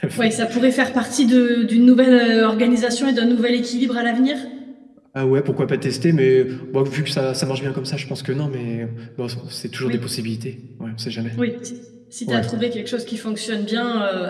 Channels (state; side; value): identical; both; correlation 1.00